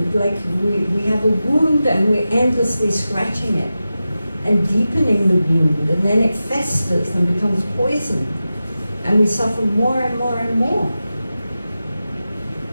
like we have a wound and we're endlessly scratching it and deepening the wound, and then it festers and becomes poisoned, and we suffer more and more and more.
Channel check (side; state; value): both; inverted; correlation -0.93